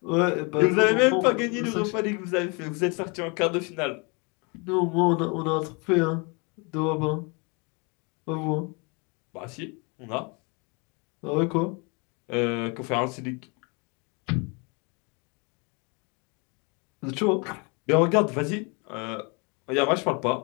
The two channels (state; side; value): quieter; right; 31.3 dB